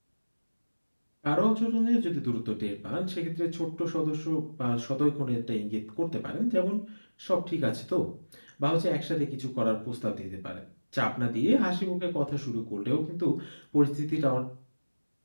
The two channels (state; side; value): inverted; both; correlation -1.00